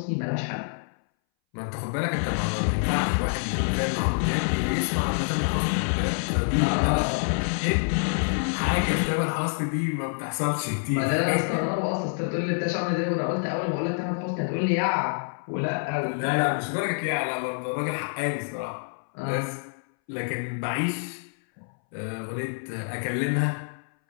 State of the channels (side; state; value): right; silent; 60 dB below the other